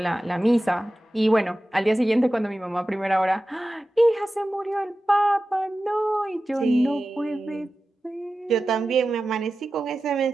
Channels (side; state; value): both; normal; correlation 0.94